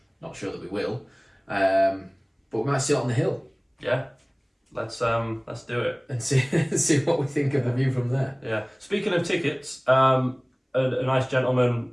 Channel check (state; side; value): identical; both; correlation 1.00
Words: not sure that we will, but we might sit on the hill. Yeah, let's do it and see what we think of the view from there. Yeah. Speaking of tickets, a nice gentleman